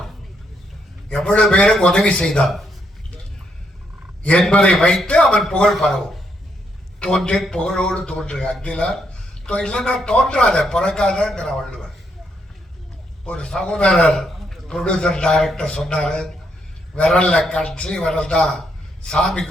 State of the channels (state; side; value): normal; both; correlation 0.76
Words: எவ்வளவு பேருக்கு உதவி செய்தான் என்பதை வைத்து அவன் புகழ் பரவும். தோன்றி புகழோடு தோன்று அக்திலார் இல்லைன்னா தோன்றாத பிறக்காதங்கிற வள்ளுவர். ஒரு சகோதரர் ப்ரொடியூசர் டைரக்டர் சொன்னாரு, விரல்ல கட்சி விரல் தான் சாமி